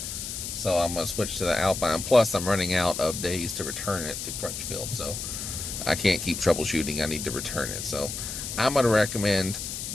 so I'm going to switch to the Alpine. Plus, I'm running out of days to return it to Crutchfield, so I can't keep troubleshooting. I need to return it. So I'm going to recommend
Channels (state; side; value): noise; left; hiss, 6 dB below the sound